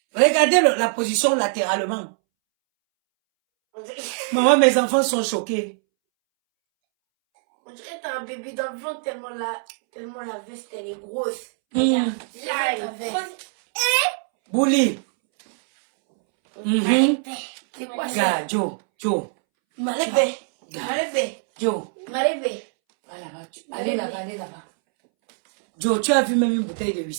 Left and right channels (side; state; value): left; silent; 64 dB below the other